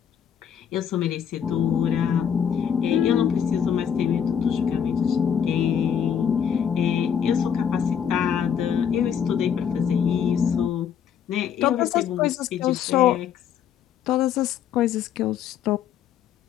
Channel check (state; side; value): quieter; right; 8.2 dB